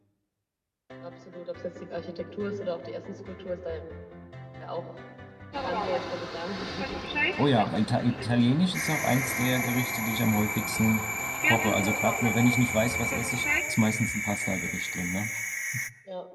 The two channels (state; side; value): identical; both; correlation 1.00